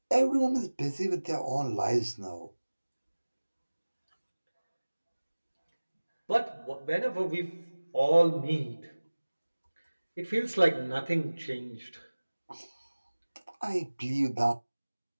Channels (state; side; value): inverted; both; correlation -1.00